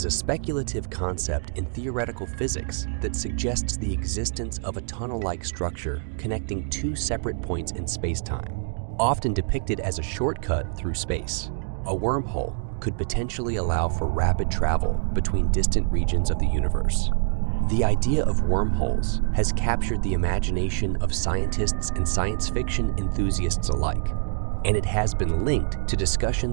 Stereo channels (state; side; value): silent; left; digital silence